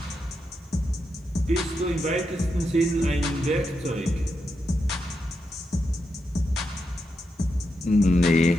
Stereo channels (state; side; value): normal; both; correlation 0.85